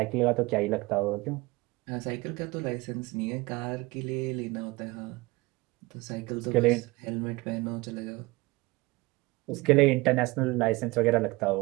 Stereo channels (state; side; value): quieter; left; 22.8 dB